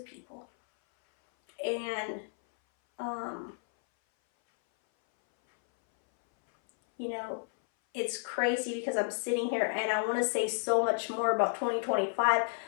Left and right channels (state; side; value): silent; right; 57 dB below the other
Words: people. And, it's crazy because I'm sitting here and I want to say so much more about 2025,